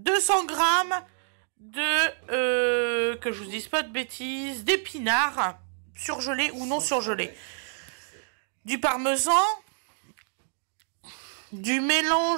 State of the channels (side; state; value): left; silent; digital silence